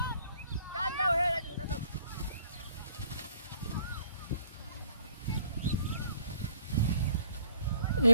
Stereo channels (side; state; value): both; inverted; correlation -0.60